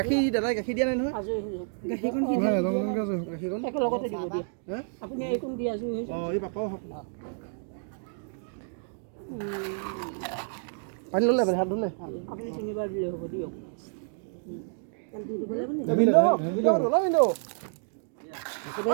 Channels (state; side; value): silent; left; digital silence